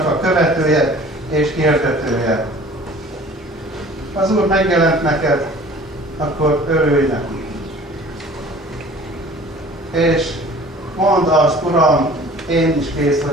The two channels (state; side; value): normal; both; correlation 0.47